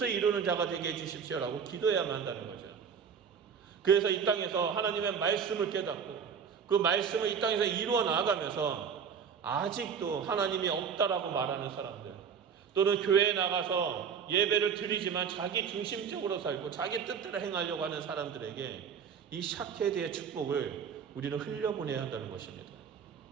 이루는 자가 되게 해주십시오라고 기도해야만 한다는 거죠. 그래서 이 땅에서 하나님의 말씀을 깨닫고 그 말씀을 이 땅에서 이루어 나아가면서 아직도 하나님이 없다라고 말하는 사람들, 또는 교회에 나가서 예배를 드리지만 자기 중심적으로 살고 자기 뜻대로 행하려고 하는 사람들에게 이 샤케드의 축복을 우리는 흘려보내야 한다는 것입니다.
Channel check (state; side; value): quieter; left; 6.8 dB